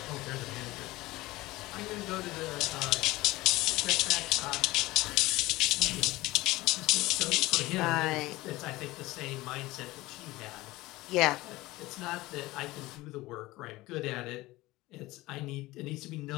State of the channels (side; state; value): right; quieter; 19.3 dB